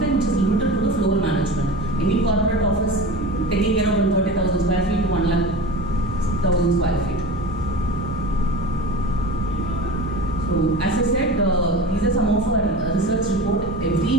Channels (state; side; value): normal; both; correlation 0.32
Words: which is limited to the floor management. Any corporate office taking care of 30,000 square feet to 1,00,000 square feet. So as I said, these are some of our research report. Every